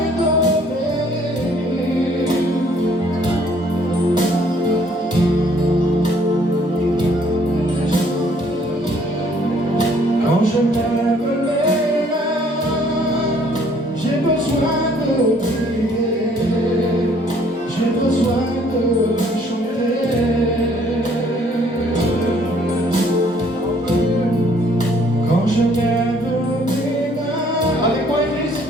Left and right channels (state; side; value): normal; both; correlation 0.62